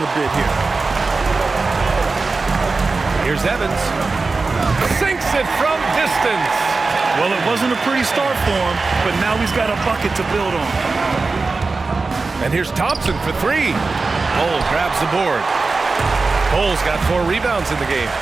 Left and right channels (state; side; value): quieter; left; 3.9 dB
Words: a bit here. Here's Evans. Sinks it from distance. Well, it wasn't a pretty start for him, but now he's got a bucket to build on. And here's Thompson for 3. Cole grabs the board. Cole's got 4 rebounds in the game.